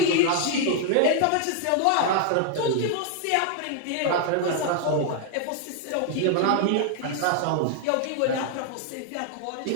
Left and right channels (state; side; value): different; both; correlation 0.00